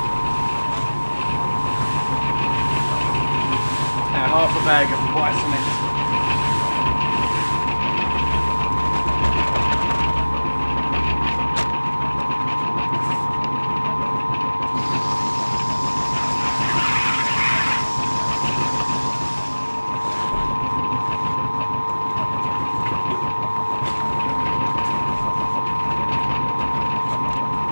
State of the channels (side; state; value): both; inverted; correlation -1.00